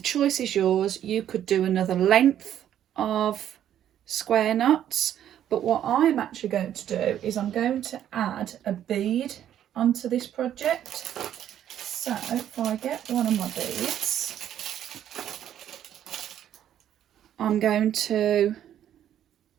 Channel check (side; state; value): left; quieter; 10.7 dB